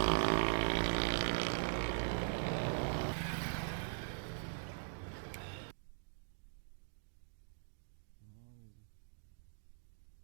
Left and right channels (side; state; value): left; silent; digital silence